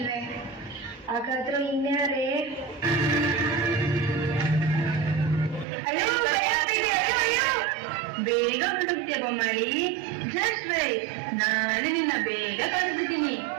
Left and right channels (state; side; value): drops out; left; at 5.7 s